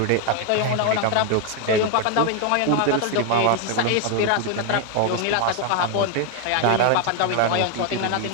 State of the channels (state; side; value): different; both; correlation 0.01